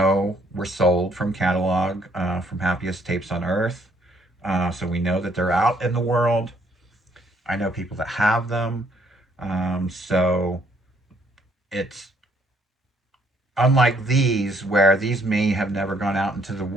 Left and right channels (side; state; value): both; normal; correlation 0.67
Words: were sold from catalog, from Happiest Tapes on Earth. So we know that they're out in the world. I know people that have them. So it's unlike these, where these may have never gone out into the